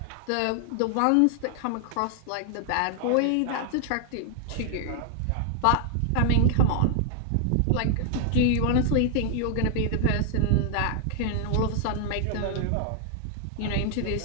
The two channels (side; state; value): both; different; correlation 0.00